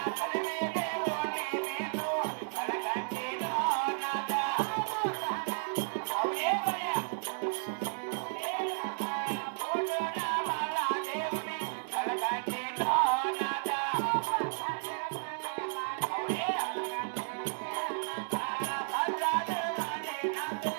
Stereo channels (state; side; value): silent; left; digital silence